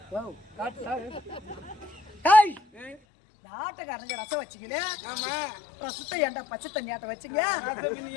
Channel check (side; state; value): right; drops out; at 3.0 s